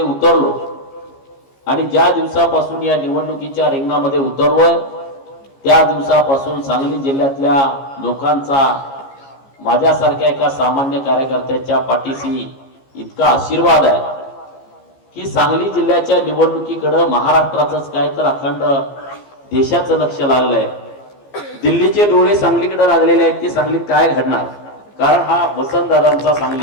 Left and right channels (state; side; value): late; right; 15 ms